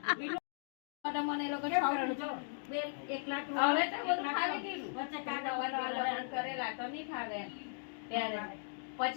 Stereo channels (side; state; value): right; silent; digital silence